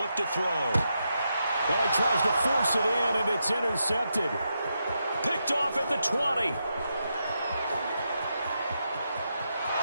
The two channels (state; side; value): inverted; both; correlation -0.84